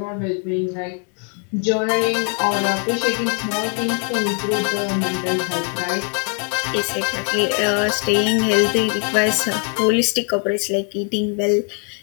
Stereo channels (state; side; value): quieter; right; 38.4 dB